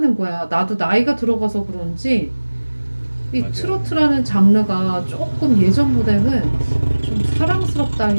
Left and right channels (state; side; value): inverted; both; correlation -1.00